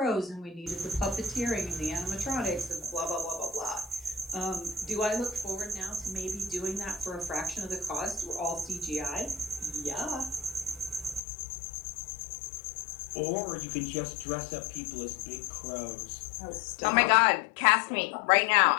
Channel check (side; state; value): right; drops out; at 11.2 s